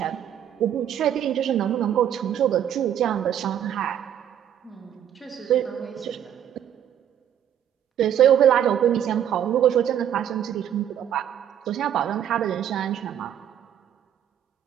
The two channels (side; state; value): left; quieter; 9.9 dB